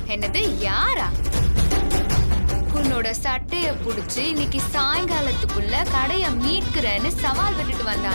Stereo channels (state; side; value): inverted; both; correlation -1.00